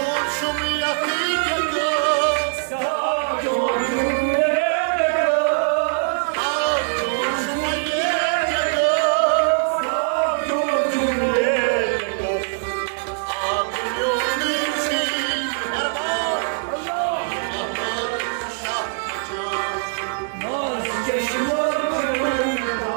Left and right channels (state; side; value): silent; left; digital silence